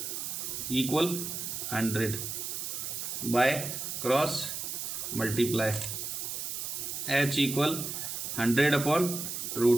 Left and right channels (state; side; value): noise; right; hiss, 4 dB below the sound